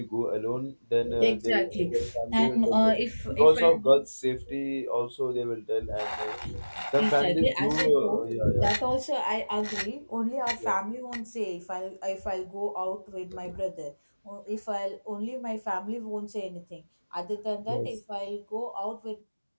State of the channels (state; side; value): inverted; both; correlation -1.00